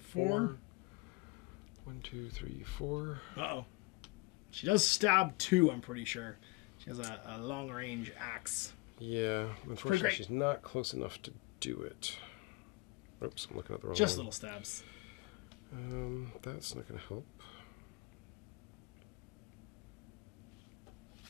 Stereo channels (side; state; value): right; quieter; 24.8 dB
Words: 4. 4. 1, 2, 3, 4. Uh-oh. She does stab 2, I'm pretty sure. She has a long-range axe. Yeah, pretty unfortunately great. she's not close enough to do it. Oops, I'm looking at the wrong Just one. little stabs. That's not going to help.